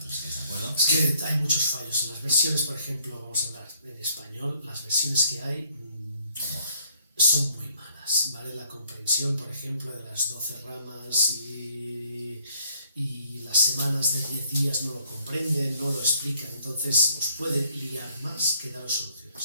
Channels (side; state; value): both; inverted; correlation -0.65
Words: estáis de acuerdo. Es que hay muchos fallos en las versiones, por ejemplo, vamos a hablar en español, las versiones que hay son muy malas, ¿vale? La comprensión, por ejemplo, de las 12 ramas y las semanas de 10 días no lo comprenden, no lo explican, entonces os puede liar más que daros